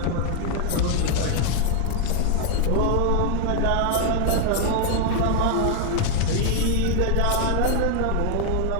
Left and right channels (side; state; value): both; different; correlation 0.00